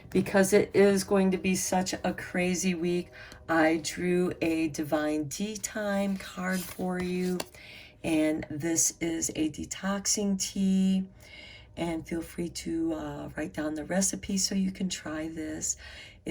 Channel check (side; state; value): both; identical; correlation 1.00